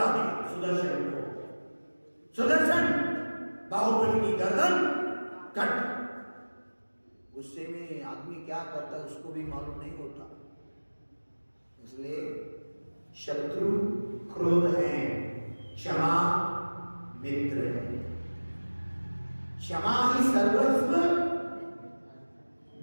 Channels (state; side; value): inverted; both; correlation -1.00